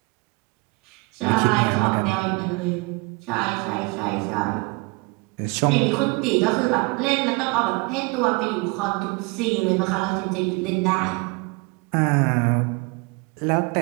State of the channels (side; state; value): left; quieter; 27.5 dB